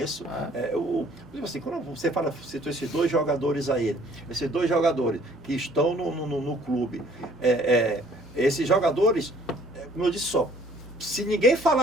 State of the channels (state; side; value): normal; both; correlation 0.58